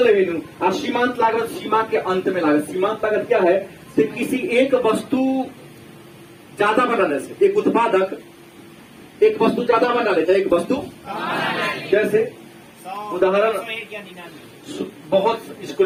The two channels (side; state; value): both; identical; correlation 1.00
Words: रेवेन्यू। और सीमांत लागत सीमा के अंत में लागत। सीमांत लागत क्या है? तो किसी एक वस्तु ज्यादा बनाने से, एक उत्पादक एक वस्तु ज्यादा बना लेता है। एक वस्तु जैसे उदाहरण, बहुत इसको